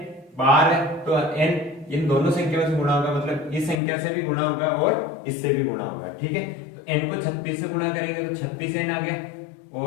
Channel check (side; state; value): right; drops out; at 3.8 s